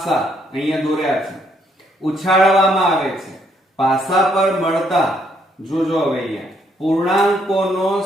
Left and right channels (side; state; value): both; normal; correlation 0.71